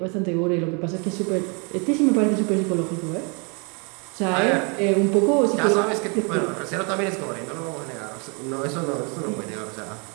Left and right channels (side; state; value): left; quieter; 34.0 dB